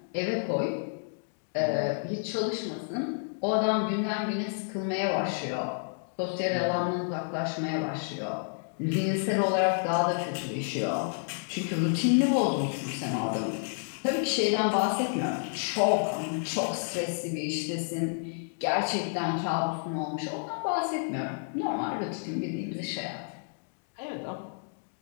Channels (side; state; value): right; silent; digital silence